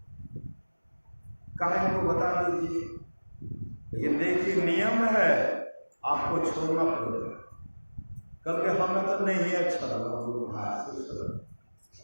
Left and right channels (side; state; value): both; inverted; correlation -1.00